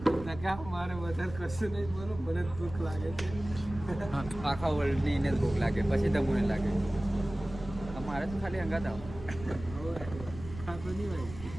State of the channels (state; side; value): noise; right; rumble, 13 dB below the sound